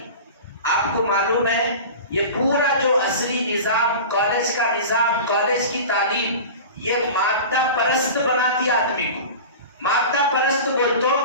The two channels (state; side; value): inverted; both; correlation -0.33